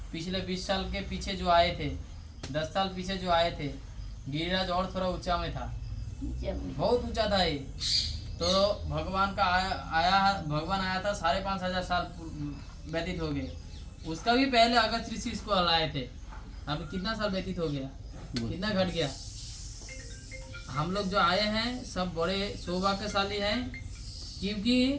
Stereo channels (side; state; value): both; identical; correlation 1.00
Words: पिछले 20 साल के पीछे जो आए थे, 10 साल पीछे जो आए थे, गिरिराज और थोड़ा ऊंचा में था, बहुत ऊंचा था ये। तो भगवान आया था 5,500 साल व्यतीत हो गए। उसका भी पहले अगस्त ऋषि इसको हलाए थे। अभी कितना साल व्यतीत हो गया, कितना घट गया। हम लोग जो आए हैं सब बड़े सौभाग्यशाली हैं, क्योंकि